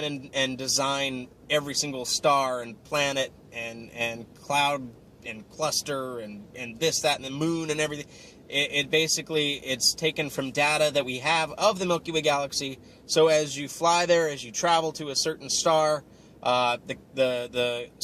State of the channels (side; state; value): both; identical; correlation 1.00